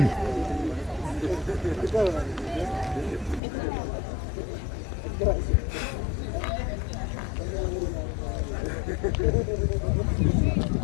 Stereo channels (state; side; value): drops out; right; at 3.4 s